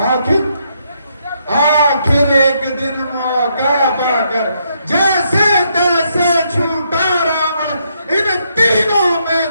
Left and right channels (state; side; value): inverted; both; correlation -0.76